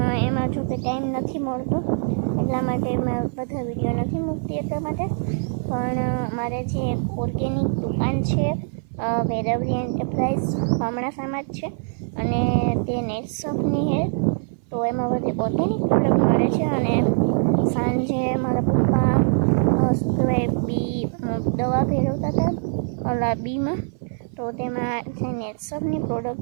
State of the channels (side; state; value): left; silent; 58 dB below the other